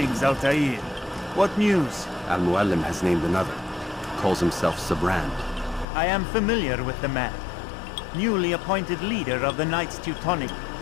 Altair. What news? Al-Muallim has named another. Calls himself Sibrand. I am familiar with the man. Newly appointed leader of the Knights Teutonic,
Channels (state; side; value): drops out; right; at 5.9 s